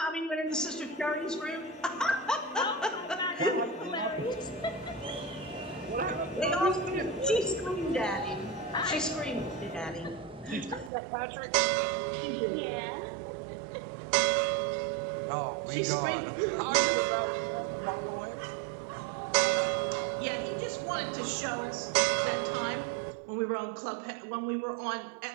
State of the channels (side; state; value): left; drops out; at 10.9 s